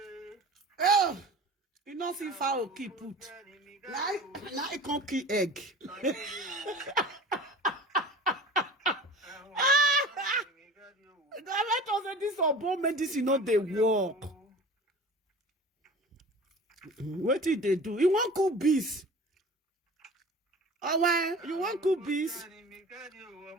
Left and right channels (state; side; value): normal; both; correlation 0.39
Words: Oh, you don't see foul keep put. Now I can't keep egg. Let us say this urban medicine not they work. What did they do? You want cook bees? Oh, why? You want cook bees?